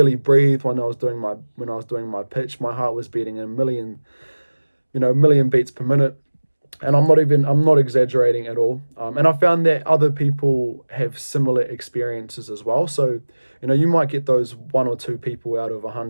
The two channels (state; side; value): inverted; both; correlation -1.00